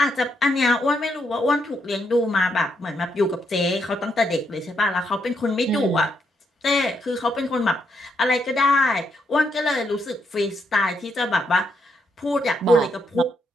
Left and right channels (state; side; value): normal; both; correlation 0.78